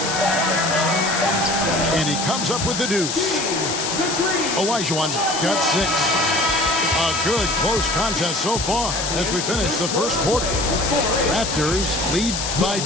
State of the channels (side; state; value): left; noise; hiss, 3 dB below the sound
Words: And he comes up with the deuce. Olajuwon's got 6. A good close contest so far as we finish the first quarter. Raptors lead by